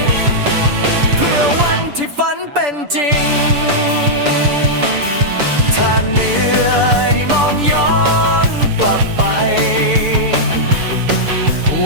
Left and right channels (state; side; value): late; left; 6.9 ms